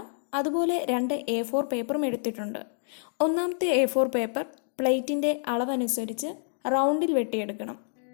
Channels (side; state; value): right; silent; digital silence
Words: അതുപോലെ 2 A4 പേപ്പറും എടുത്തിട്ടുണ്ട്. ഒന്നാമത്തെ A4 പേപ്പർ പ്ലേറ്റിൻ്റെ അളവനുസരിച്ച് റൗണ്ടിൽ വെട്ടിയെടുക്കണം.